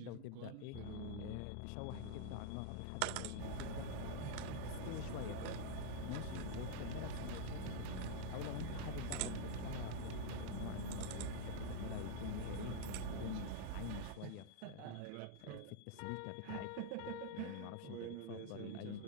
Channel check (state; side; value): different; both; correlation 0.00